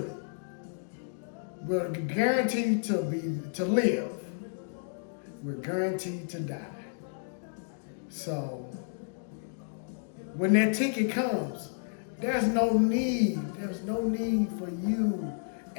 We're guaranteed to live. We're guaranteed to die. So when that ticket comes, there's no need for you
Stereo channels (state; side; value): silent; right; digital silence